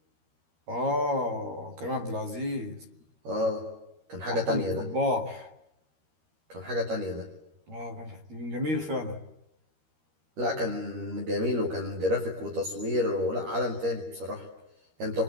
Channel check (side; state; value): left; late; 13 ms